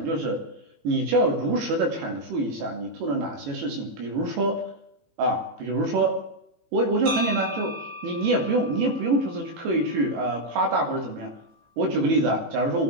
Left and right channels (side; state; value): left; late; 18 ms